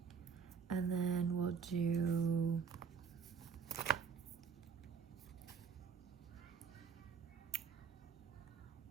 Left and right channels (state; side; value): quieter; left; 6.4 dB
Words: And then we'll do